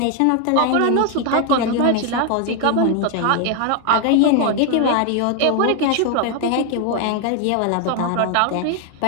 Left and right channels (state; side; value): different; both; correlation 0.00